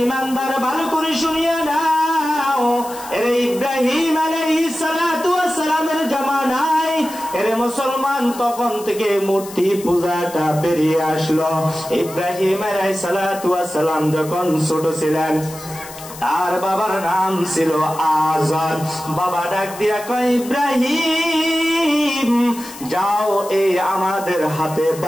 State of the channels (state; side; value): noise; left; hiss, 15 dB below the sound